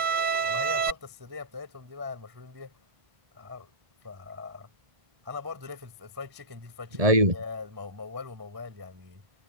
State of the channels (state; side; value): late; left; 1.7 ms